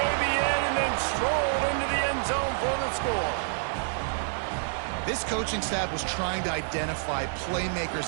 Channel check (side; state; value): left; silent; 59 dB below the other